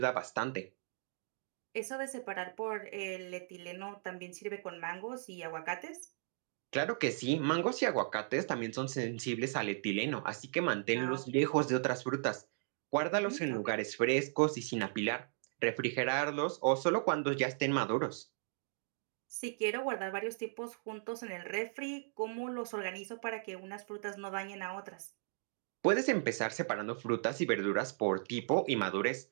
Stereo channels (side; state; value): left; silent; digital silence